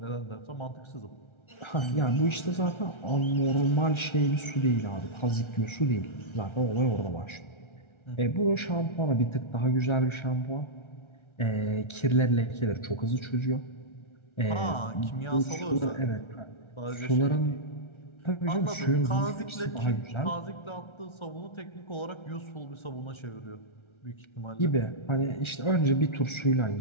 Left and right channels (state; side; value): late; right; 1.3 ms